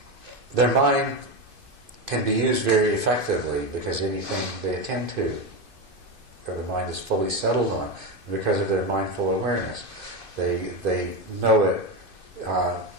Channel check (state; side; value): late; left; 2.6 ms